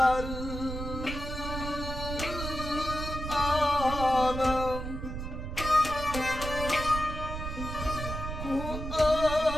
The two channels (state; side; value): noise; right; rumble, 6 dB below the sound